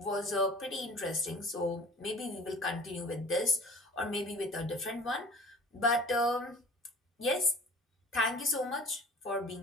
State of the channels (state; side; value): normal; both; correlation 0.45